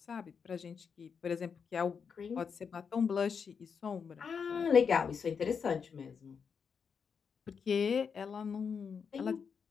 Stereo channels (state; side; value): quieter; right; 6.3 dB